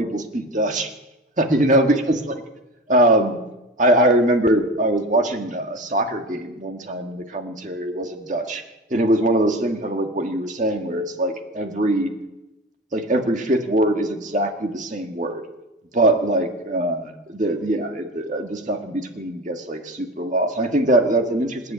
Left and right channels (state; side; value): normal; both; correlation 0.30